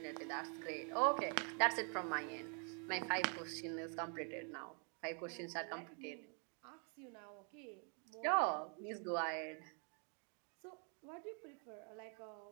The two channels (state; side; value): quieter; left; 39.4 dB